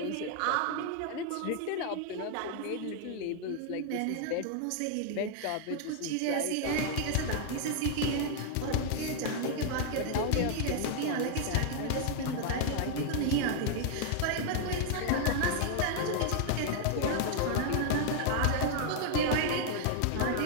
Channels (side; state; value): both; different; correlation 0.00